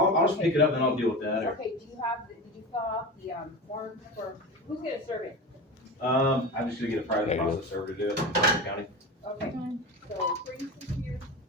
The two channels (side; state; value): both; normal; correlation 0.27